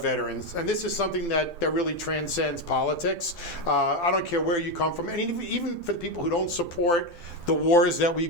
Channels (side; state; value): right; late; 12 ms